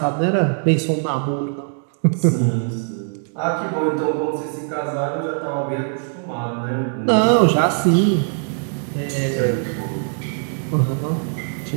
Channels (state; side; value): silent; left; 65 dB below the other